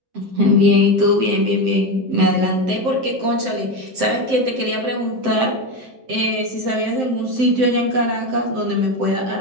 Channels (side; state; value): left; late; 7.7 ms